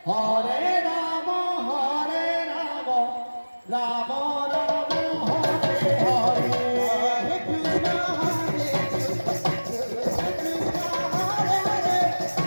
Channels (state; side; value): inverted; both; correlation -1.00